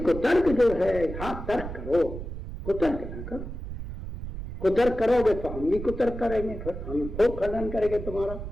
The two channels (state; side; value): noise; right; rumble, 8 dB below the sound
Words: कुतर्क जो है, हाँ तर्क करो, कुतर्क ना करो। कुतर्क करोगे तो हम भी कुतर्क करेंगे, फिर हम खूब खंडन करेंगे तुम्हारा।